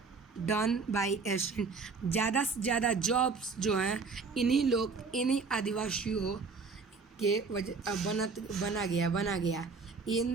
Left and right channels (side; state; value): left; quieter; 4.6 dB